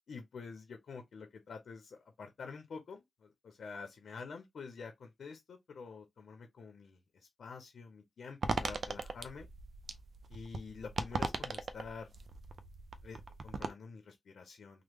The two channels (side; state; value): both; normal; correlation 0.85